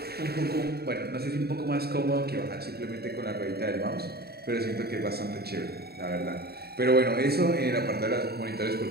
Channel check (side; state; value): left; late; 0.46 ms